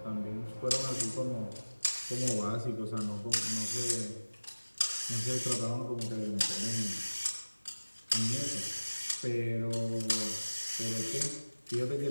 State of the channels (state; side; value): inverted; both; correlation -1.00